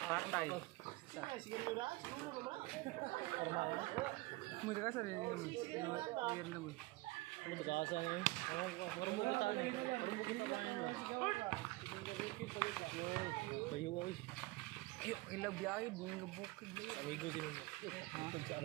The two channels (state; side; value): quieter; left; 21.4 dB